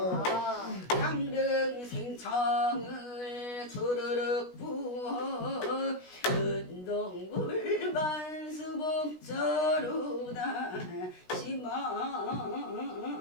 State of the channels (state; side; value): late; right; 16 ms